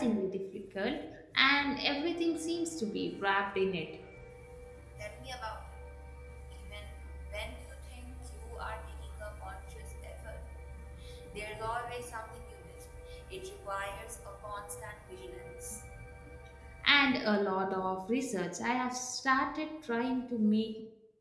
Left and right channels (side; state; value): both; identical; correlation 1.00